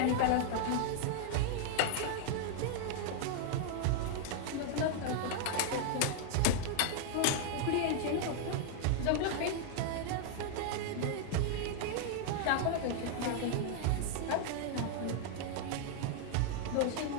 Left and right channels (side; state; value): both; different; correlation 0.00